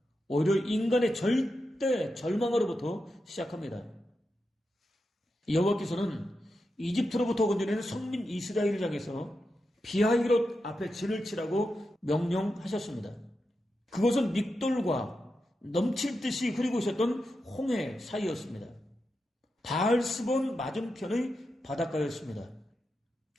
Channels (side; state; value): both; normal; correlation 0.88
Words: 오히려 인간의 절대 절망으로부터 시작합니다. 여호와께서는 이집트로부터 건져낸 성민 이스라엘을 향해서 비하히롯 앞에 진을 치라고 명령하셨습니다. 그것은 믹돌과 넘칠 듯이 흐르고 있었던 홍해 사이였습니다. 바알스본 맞은편의 바닷가였습니다.